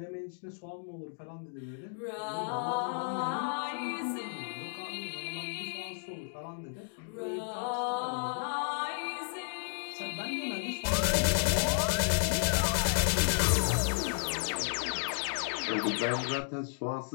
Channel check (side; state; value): right; silent; digital silence